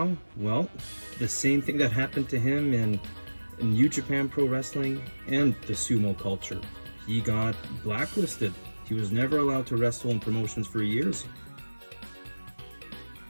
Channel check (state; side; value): inverted; both; correlation -1.00